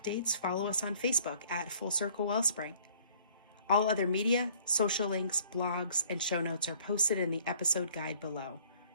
follow us on Facebook at Full Circle Wellspring. All other media, social links, blogs, and show notes are posted in the episode guide below.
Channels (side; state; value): both; inverted; correlation -0.57